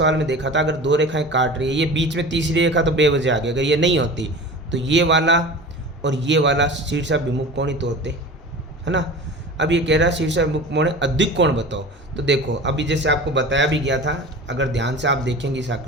में देखा था, अगर दो रेखाएं काट रही है, ये बीच में तीसरी रेखा तो बेवजह आ गई। अगर ये नहीं होती तो ये वाला और ये वाला शीर्षाभिमुख कोण ही तो होते, है ना। अब ये कह रहा है शीर्षाभिमुख कोण अधिक कोण बताओ। तो देखो अभी जैसे आपको बताया भी गया था, अगर ध्यान से आप देखेंगे इस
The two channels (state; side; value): normal; both; correlation 0.35